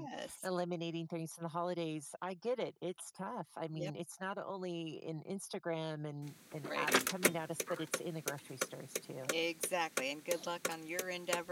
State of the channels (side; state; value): both; identical; correlation 1.00